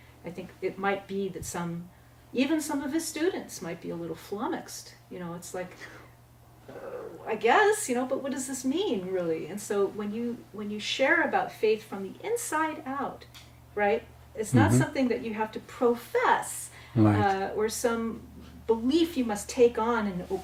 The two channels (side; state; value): both; identical; correlation 1.00